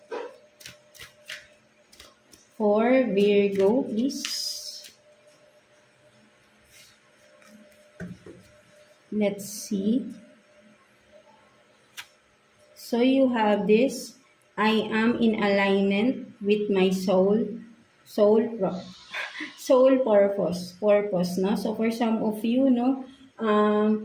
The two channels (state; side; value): identical; both; correlation 1.00